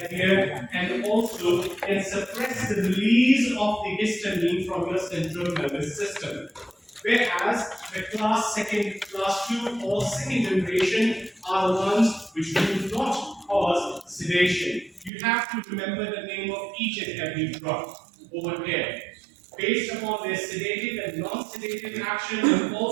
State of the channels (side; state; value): left; drops out; at 15.1 s